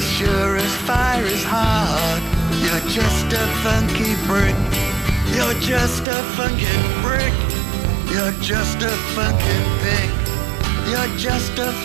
sure as fire is hard, you're just a funky brick. You're just a funky brick. You're just a funky pig. You're just a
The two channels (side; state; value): left; drops out; at 6.1 s